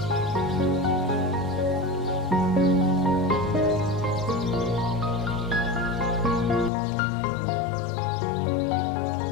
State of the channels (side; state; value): right; drops out; at 6.7 s